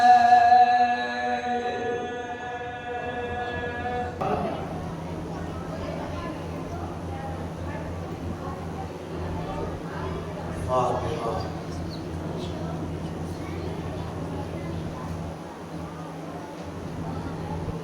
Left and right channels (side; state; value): both; identical; correlation 1.00